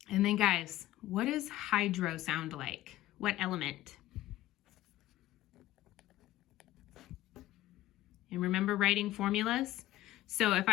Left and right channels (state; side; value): quieter; right; 15.3 dB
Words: then guys, what does hydro sound like? What element? And remember writing formulas? So if